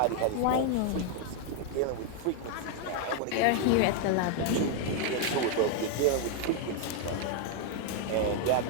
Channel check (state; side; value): different; both; correlation 0.00